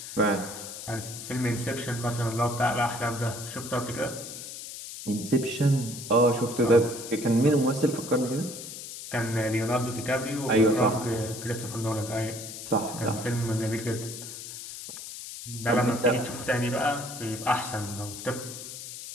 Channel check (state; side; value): noise; left; hiss, 10 dB below the sound